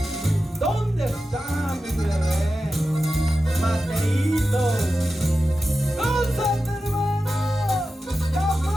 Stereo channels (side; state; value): both; normal; correlation 0.92